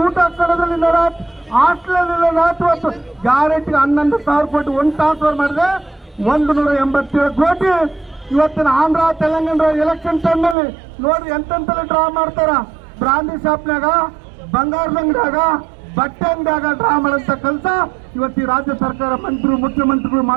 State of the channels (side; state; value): left; drops out; at 10.6 s